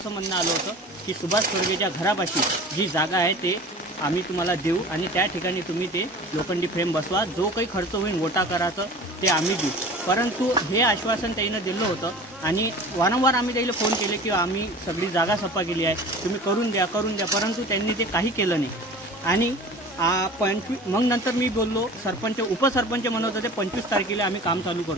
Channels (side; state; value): both; normal; correlation 0.39